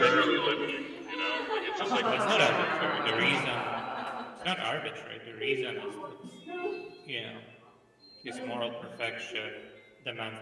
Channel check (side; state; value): both; identical; correlation 1.00